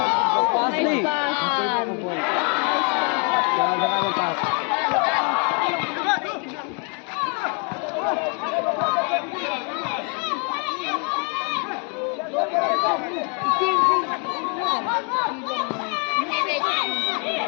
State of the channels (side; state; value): right; quieter; 37.5 dB